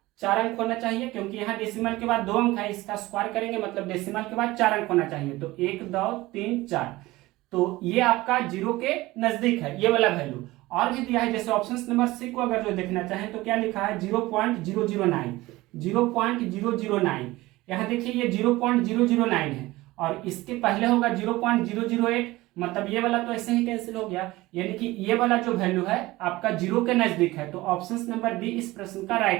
4 अंक होना चाहिए, क्योंकि यहाँ डेसिमल के बाद 2 अंक है। इसका स्क्वायर करेंगे मतलब डेसिमल के बाद 4 अंक होना चाहिए। तो 1 2 3 4, तो ये आपका 0 के नजदीक है, ये वाला वैल्यू। और भी दिया है, जैसे ऑप्शन नंबर सी को अगर जो देखना चाहें तो क्या लिखा है 0.009, 0.009। यहाँ देखिए ये 0.009 है और इसके पहले होगा 0.008, मतलब ये वाला तो ऐसे ही कैंसिल हो गया, यानी कि ये वाला जो वैल्यू है आपका जीरो के नजदीक है। तो ऑप्शन नंबर डी इस प्रश्न का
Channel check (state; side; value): quieter; left; 19.1 dB